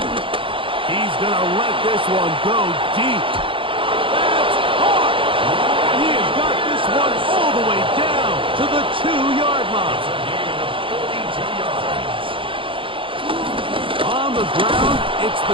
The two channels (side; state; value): left; late; 0.25 ms